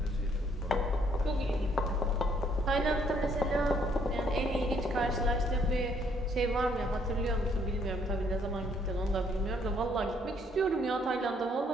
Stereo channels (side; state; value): both; normal; correlation 0.67